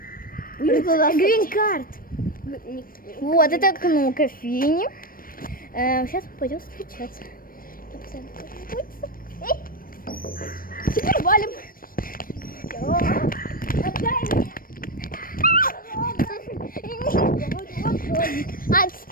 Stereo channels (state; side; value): late; right; 0.41 ms